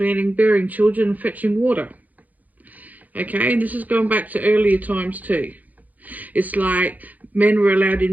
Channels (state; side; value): late; left; 0.080 ms